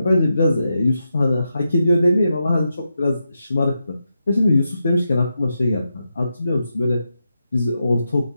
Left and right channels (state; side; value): inverted; both; correlation -0.86